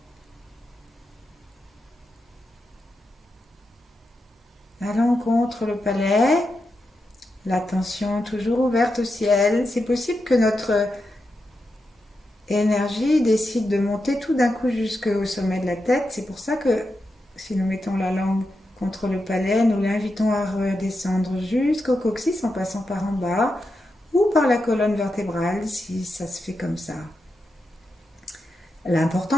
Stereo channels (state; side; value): normal; both; correlation 0.87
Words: Allons contre le palais, l'attention toujours ouverte au ciel. C'est possible que notre énergie décide de monter tout d'un coup jusqu'au sommet de la tête. C'est pour ça que si nous mettons la langue contre le palais, nous l'invitons à redescendre jusqu'au coccyx en passant par en bas ou par la colonne vertébrale si ça se fait comme ça.